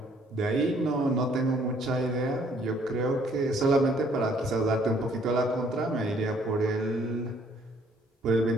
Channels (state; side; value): normal; both; correlation 0.63